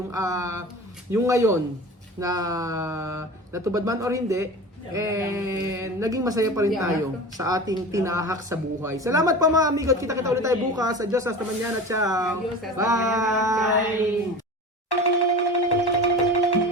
ngayon, na natupad man or hindi, naging masaya pa rin tayo sa ating tinahak sa buhay. Salamat pa mga amigo. Kita-kita ulit tayo bukas. Adios, hasta mañana. Ciao. Adios, hasta Bye.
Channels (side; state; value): both; normal; correlation 0.34